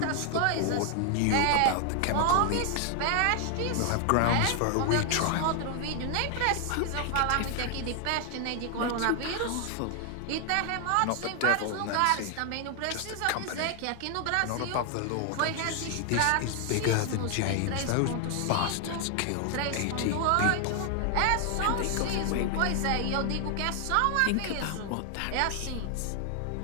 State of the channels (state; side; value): different; both; correlation 0.00